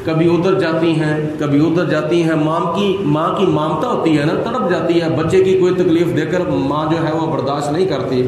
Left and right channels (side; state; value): both; identical; correlation 1.00